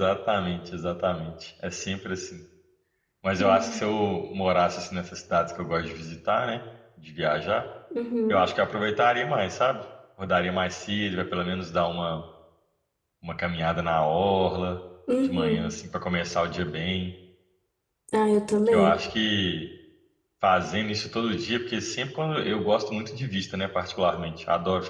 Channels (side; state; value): both; identical; correlation 1.00